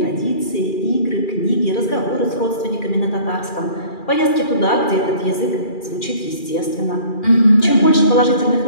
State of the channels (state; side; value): late; right; 2.4 ms